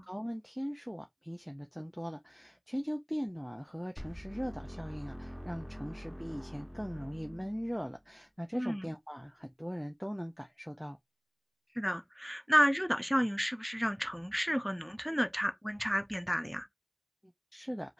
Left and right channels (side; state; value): both; identical; correlation 1.00